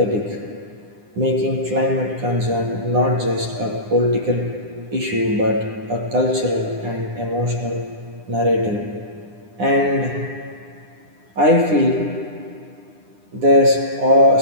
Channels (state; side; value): late; left; 9.8 ms